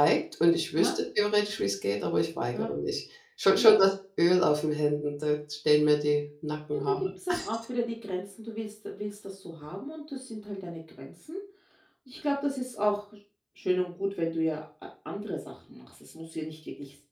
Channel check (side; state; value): both; identical; correlation 1.00